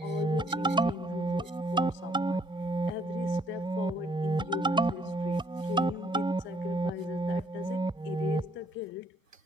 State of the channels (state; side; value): normal; both; correlation 0.66